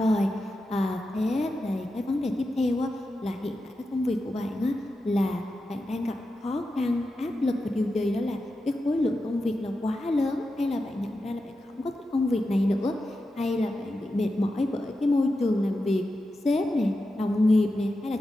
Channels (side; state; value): both; normal; correlation 0.90